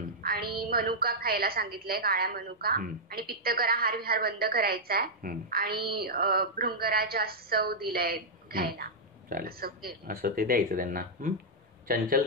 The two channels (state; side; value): normal; both; correlation -0.06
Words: आणि मनुका खायला सांगितलंय, काळ्या मनुका, आणि पित्तकरा हार विहार बंद करायचा आहे, आणि भृंगराज सव दिलाय घ्यायला. असं ते द्यायचं त्यांना.